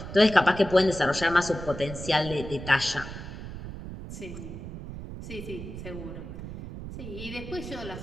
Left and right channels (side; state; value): right; noise; rumble, 10 dB below the sound